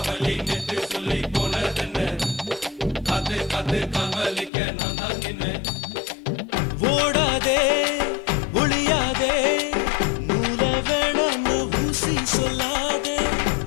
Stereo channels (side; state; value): right; drops out; at 4.5 s